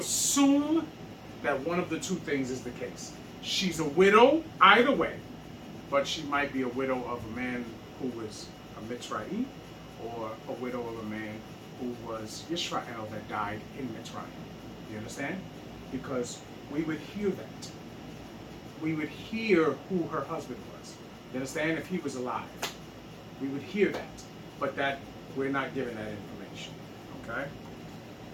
that one of the two things is the case. She's a widow either way, but she might be a widow of a man who was a Mitzrayim, or a widow of a man who was Israel that died in Mitzrayim. You understand? Because we would hear that. We would hear who her husband was. You understand? If he was alive, we would hear that. But that we're not given that information. Okay?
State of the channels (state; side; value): identical; both; correlation 1.00